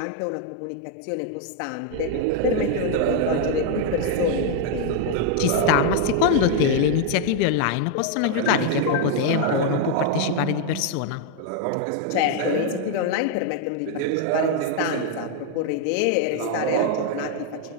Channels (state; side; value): different; both; correlation 0.00